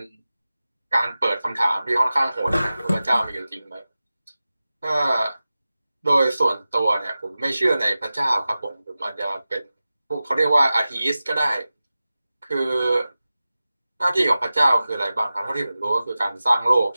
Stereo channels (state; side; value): inverted; both; correlation -0.95